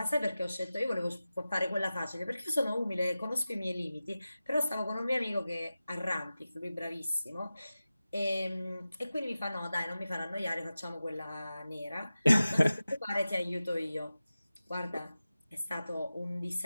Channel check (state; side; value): inverted; both; correlation -0.95